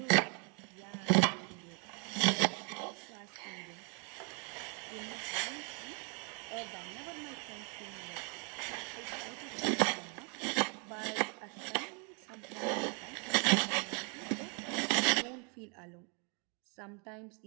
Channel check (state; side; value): quieter; left; 35.8 dB